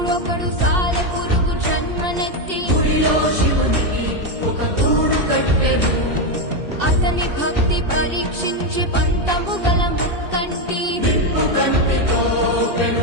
ఒకడు సాలె పురుగు జన్మనెత్తి గుడిలో శివునికి ఒక గూడు కట్టెను. అతని భక్తి పరీక్షించి పంతము గల ముక్కంటి నిప్పు కంటితో పెను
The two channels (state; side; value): late; left; 2.6 ms